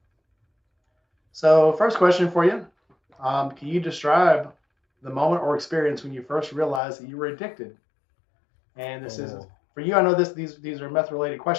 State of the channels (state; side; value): drops out; right; at 6.8 s